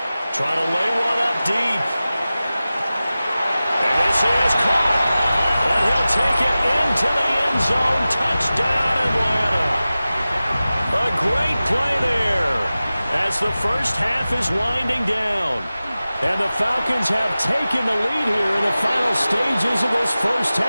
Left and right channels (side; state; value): both; inverted; correlation -0.96